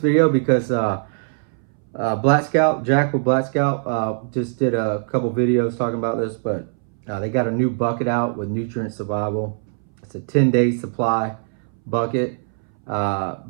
because Black Scout, Jack with Black Scout, just did a couple videos talking about this, but they got a new bucket out with Nutrient Survival. It's a 10-day supply bucket,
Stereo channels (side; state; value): left; silent; 62 dB below the other